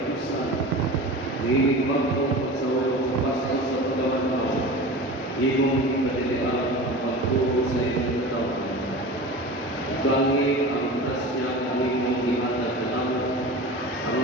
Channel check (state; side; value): normal; both; correlation 0.33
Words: dinig magpong sa ulong sa pasto sa pagawad mo, imong kadilian ang pagturo sa iyong taon. Gangi ang grasya kami mong ihatag na naman, ang